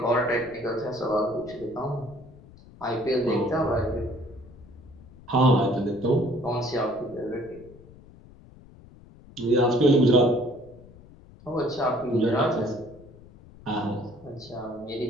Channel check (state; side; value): noise; left; rumble, 22 dB below the sound